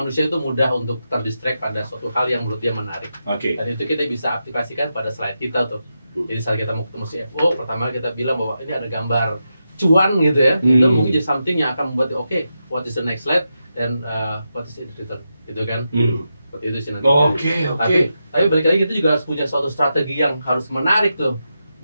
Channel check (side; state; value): both; inverted; correlation -0.87